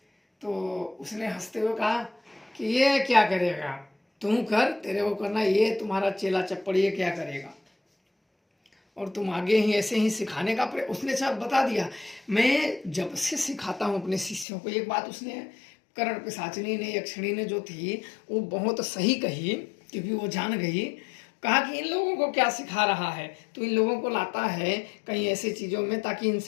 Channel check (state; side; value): drops out; right; at 14.5 s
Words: तो उसने हंसते हुए कहा कि ये क्या करेगा, तुम कर, तेरे को करना, ये तुम्हारा चेला चप्पड़ ये क्या करेगा, और तुम आगे ही ऐसे ही सिखाने का उसने सब बता दिया। मैं जब से सिखाता हूँ अपने शिष्यों को, एक बात उसने कर्ण पिशाचिनी ने, यक्षिणी ने जो थी वो बहुत सही कही, क्योंकि वो जान गई। कहा कि इन लोगों को क्या सिखा रहा है, तो इन लोगों को लाता है कहीं ऐसी चीज़ों में ताकि